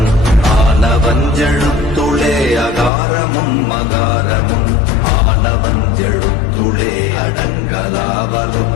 ஆனவஞ்செழுத்துளே அகாரமும் மகாரமும் ஆனவஞ்செழுத்துளே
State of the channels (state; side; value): drops out; right; at 2.9 s